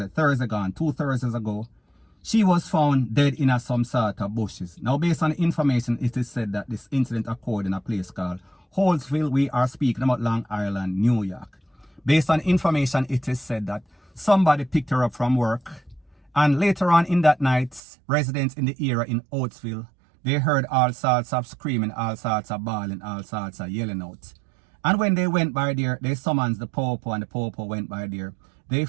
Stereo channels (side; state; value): left; drops out; at 17.8 s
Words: gone, 2 Thursdays ago, she was found dead in some sort of bushes. Now, based on the information, it is said that this incident occurred in a place called Holtzville. We are speaking about Long Island, New York. Based on information, it is said that somebody picked her up from work, and later on in that night, residents in the area in Holtzville, they heard all sorts of screaming, all sorts of bawling, all sorts of yelling out. And when they went by there, they summoned the popo, and the popo went by there. They